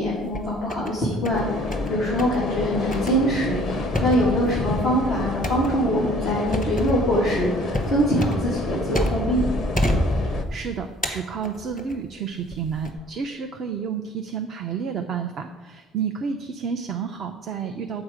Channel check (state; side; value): normal; both; correlation 0.52